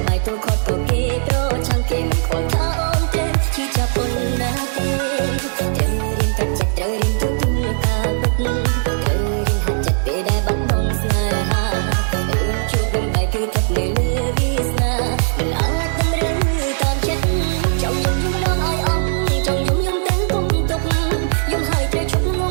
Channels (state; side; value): silent; left; 66 dB below the other